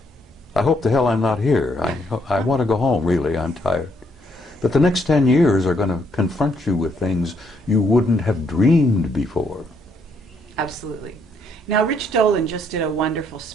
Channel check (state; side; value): normal; both; correlation 0.72